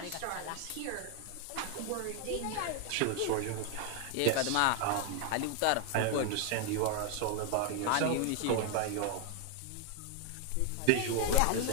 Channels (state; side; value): different; both; correlation 0.00